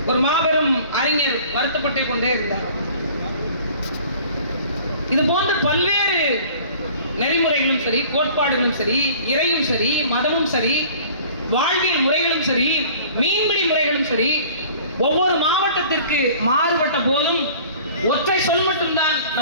ஒரு மாபெரும் அறிஞர் வருத்தப்பட்டே கொண்டே இருந்தார். இது போன்ற பல்வேறு நெறிமுறைகளும் சரி, கோட்பாடுகளும் சரி, இறையும் சரி, மதமும் சரி, வாழ்வியல் முறைகளும் சரி, மீன்பிடி முறைகளும் சரி, ஒவ்வொரு மாவட்டத்திற்கு மாறுபட்ட போதும் ஒற்றை சொல் மட்டும்தான்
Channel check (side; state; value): both; inverted; correlation -0.49